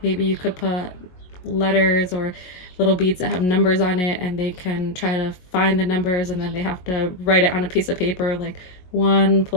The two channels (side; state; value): right; late; 22 ms